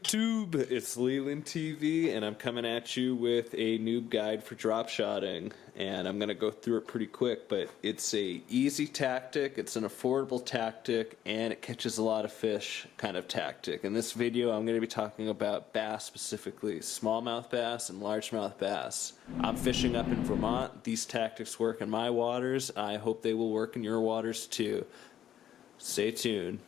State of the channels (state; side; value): quieter; right; 10.7 dB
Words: it's Leland TV and I'm coming at you with a noob guide for drop shotting, and I'm going to go through it pretty quick, but it's a easy tactic, it's an affordable tactic, and it catches a lot of fish kind of tactic. In this video I'm going to be talking about bass, specifically smallmouth bass and largemouth bass. I'm fishing up in Vermont. These tactics work in my waters. I hope they will work in your waters too. Stay tuned.